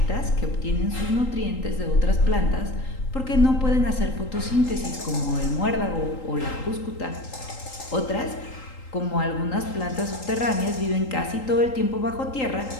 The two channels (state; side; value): late; right; 3.8 ms